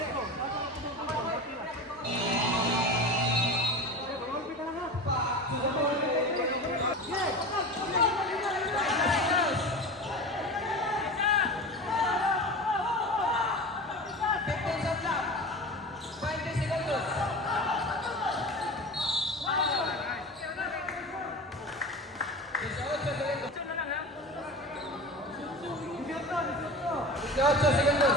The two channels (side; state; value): both; normal; correlation 0.31